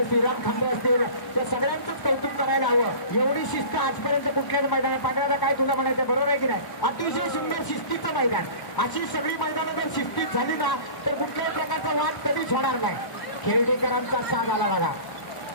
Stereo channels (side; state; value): right; late; 1.0 ms